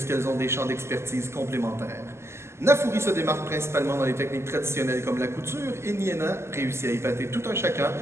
ont des champs d'expertise complémentaires. Nafuri se démarque principalement dans les techniques traditionnelles comme la couture et Niena réussit à épater tout un chacun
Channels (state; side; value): late; left; 0.13 ms